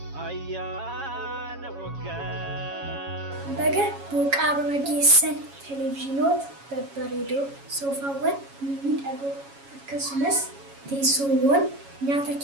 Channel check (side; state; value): left; late; 7.2 ms